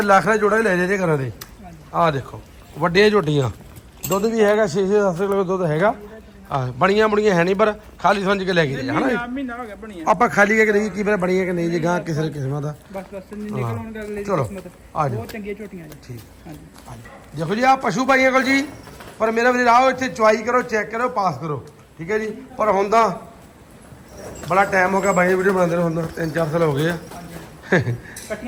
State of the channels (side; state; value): both; identical; correlation 1.00